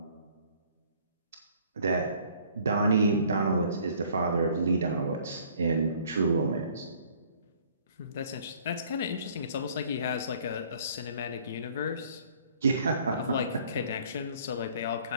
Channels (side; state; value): both; inverted; correlation -0.57